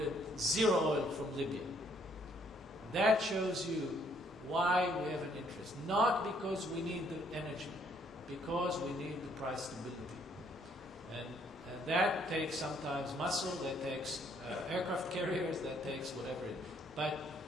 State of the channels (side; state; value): both; normal; correlation 0.67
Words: zero oil from Libya. That shows you why we have an interest. Not because we need the energy, because we need the price stability. And that takes sometimes muscle, that takes aircraft carriers, that takes whatever it is. But